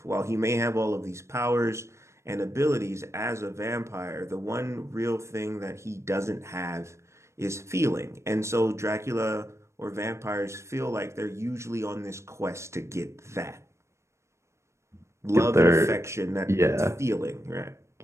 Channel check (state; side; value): late; left; 0.13 ms